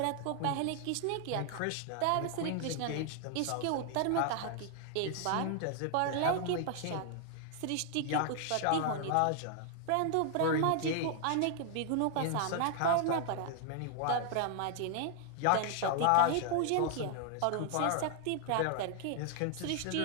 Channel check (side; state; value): both; different; correlation 0.00